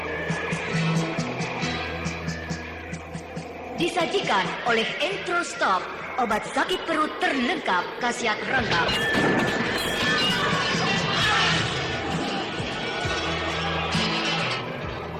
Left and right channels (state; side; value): identical; both; correlation 1.00